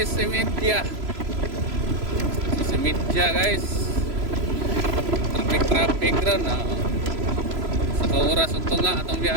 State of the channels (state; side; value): late; left; 3.0 ms